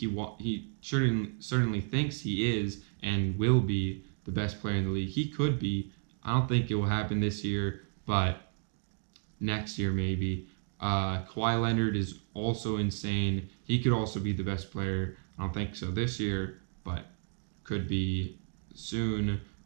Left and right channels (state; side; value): silent; left; 56 dB below the other